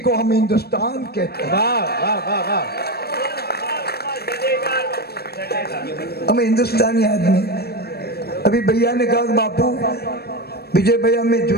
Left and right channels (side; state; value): right; late; 0.46 ms